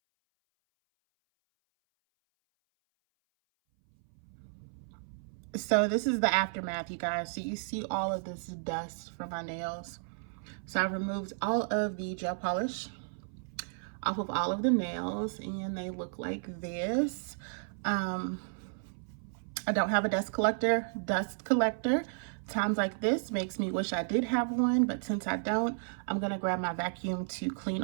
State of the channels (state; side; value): silent; left; 56 dB below the other